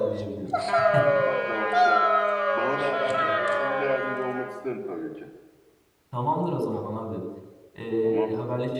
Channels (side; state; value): both; identical; correlation 1.00